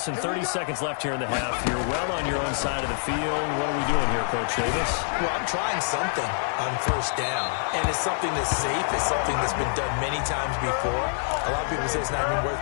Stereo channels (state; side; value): silent; right; 61 dB below the other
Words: than 30 seconds left here in the half. You're well on your own side of the field. What are we doing here, Coach Davis? Well, I'm trying something on first down, and it's something that's safe. It's something that's been done many times before. A lot of people say it's not even worth